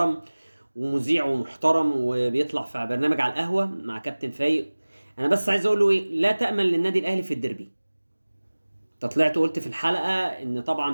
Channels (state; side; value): inverted; both; correlation -1.00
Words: ومذيع ومحترم وبيطلع في برنامج على القهوه مع كابتن فايق. انا بس عايز اقول له ايه: لا تامن للنادي الاهلي في الديربي. انت طلعت قلت في الحلقه ان